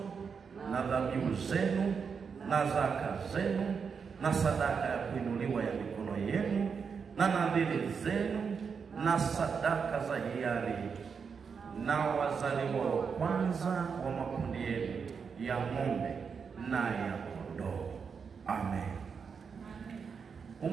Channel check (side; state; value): left; quieter; 6.0 dB